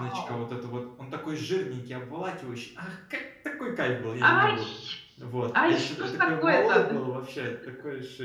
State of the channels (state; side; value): identical; both; correlation 1.00